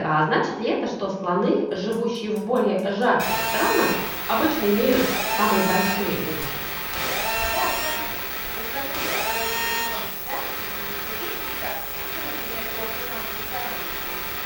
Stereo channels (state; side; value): identical; both; correlation 1.00